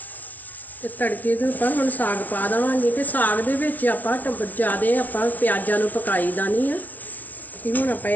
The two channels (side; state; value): right; late; 0.077 ms